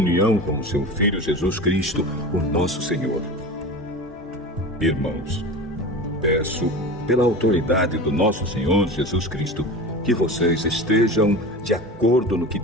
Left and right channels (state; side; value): normal; both; correlation 0.32